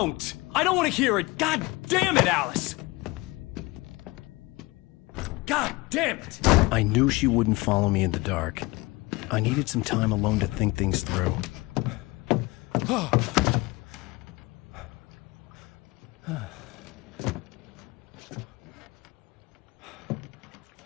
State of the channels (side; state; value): right; quieter; 22.8 dB